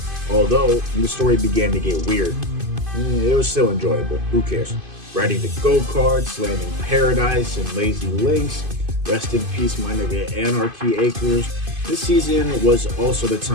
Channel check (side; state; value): left; late; 2.5 ms